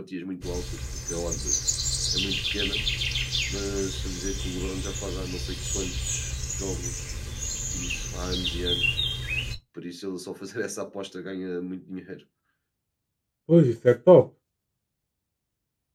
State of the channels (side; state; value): both; identical; correlation 1.00